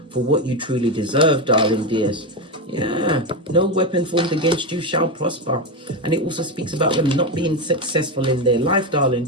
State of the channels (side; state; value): both; normal; correlation 0.13